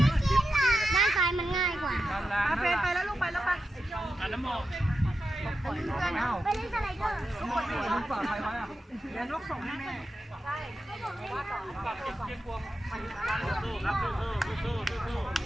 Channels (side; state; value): both; normal; correlation 0.90